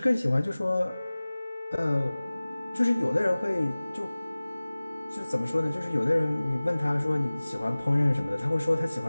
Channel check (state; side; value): inverted; both; correlation -0.99